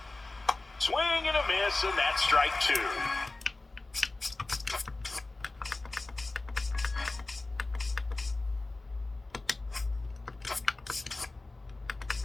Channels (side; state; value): right; quieter; 3.1 dB